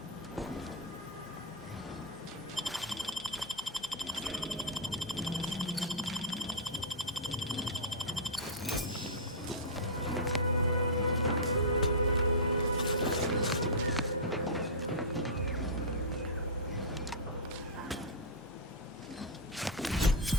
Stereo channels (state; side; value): normal; both; correlation -0.10